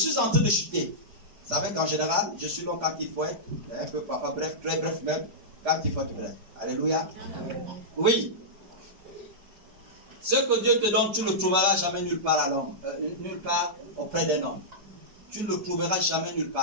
en train de chuter. Vous savez qu'en général, je suis long quand il faut être, un peu parfois bref, très bref même, quand il faut être bref. Alléluia. Oui. Ce que Dieu te donne, tu ne le trouveras jamais nulle part à l'homme, nulle part auprès d'un homme. Tu ne le trouveras jamais nulle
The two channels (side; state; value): left; late; 5.1 ms